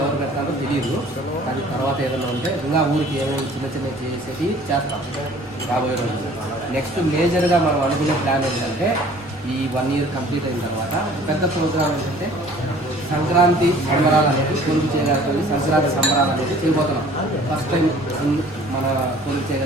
ఎవరు పెట్టాలో తెలియదు, అది తర్వాత ఏదైనా ఉంటే ఇంకా ఊరికి ఏమేమి చిన్న చిన్న చేసేది చేస్తాం రాబోయే రోజులు. నెక్స్ట్ మేజర్గా మనం అనుకునే ప్లాన్ ఏంటంటే ఈ 1 year కంప్లీట్ అయిన తర్వాత పెద్ద ప్రోగ్రామ్ ఏంటంటే సంక్రాంతి సంబరాలు అనేది కొలుపు చేయగలిగి సంక్రాంతి సంబరాలు అనేది చేయబోతున్నాం. ఫస్ట్ టైం మన కొలుపు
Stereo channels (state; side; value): normal; both; correlation 0.51